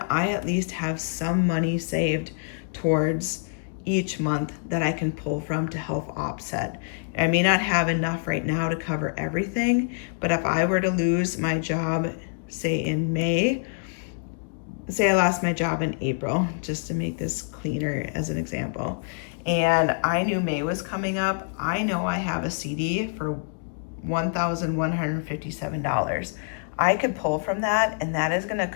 I at least have some money saved towards each month that I can pull from to help offset. I may not have enough right now to cover everything, but if I were to lose my job, say in May, say I lost my job in April, just to make this cleaner as an example, and I knew May was coming up, I know I have a CD for $1,157. I could pull from that, and that is going to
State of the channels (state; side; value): silent; right; digital silence